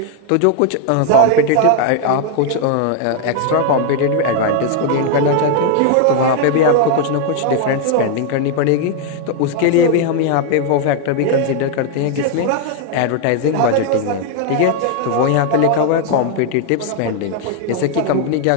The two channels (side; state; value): both; different; correlation 0.00